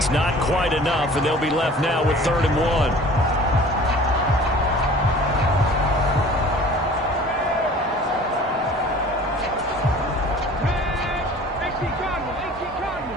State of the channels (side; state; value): both; normal; correlation 0.46